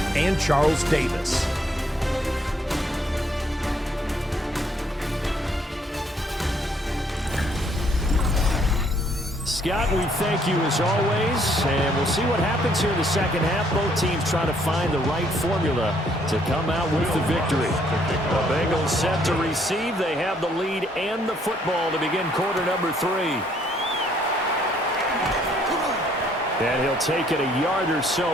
and Charles Davis. Scott, we thank you as always, and we'll see what happens here in the second half. Both teams trying to find the right formula to come out with the victory. The Bengals set to receive. They have the lead and the football to begin quarter number 3. And he'll take it a yard or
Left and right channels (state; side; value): normal; both; correlation 0.67